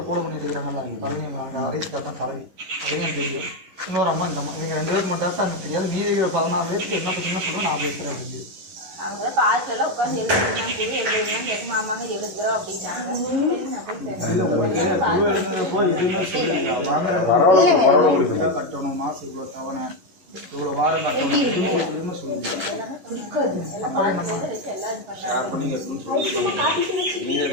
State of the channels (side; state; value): left; late; 11 ms